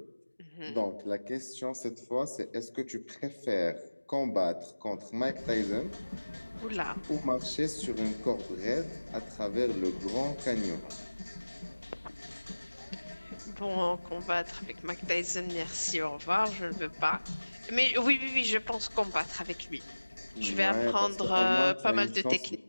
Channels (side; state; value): both; inverted; correlation -1.00